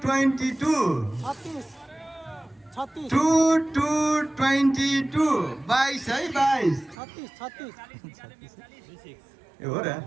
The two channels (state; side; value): drops out; left; at 7.0 s